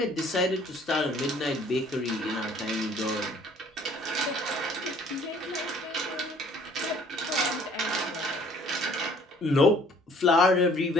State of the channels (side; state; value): both; normal; correlation 0.57